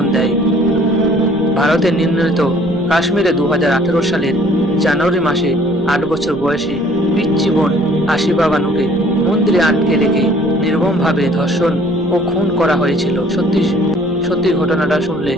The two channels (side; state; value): right; noise; rumble, 18 dB below the sound